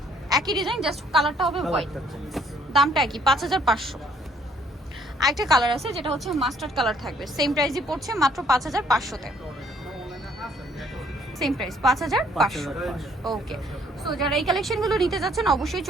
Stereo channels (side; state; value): both; normal; correlation 0.63